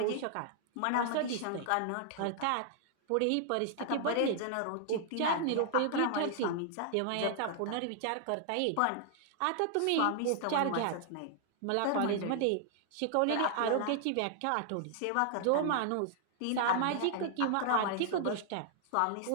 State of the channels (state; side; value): different; both; correlation -0.01